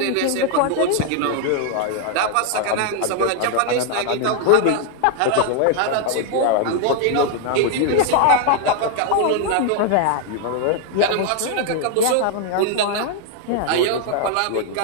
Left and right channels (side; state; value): both; different; correlation 0.00